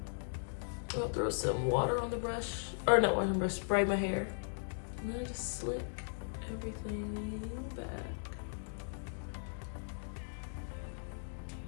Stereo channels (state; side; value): silent; right; digital silence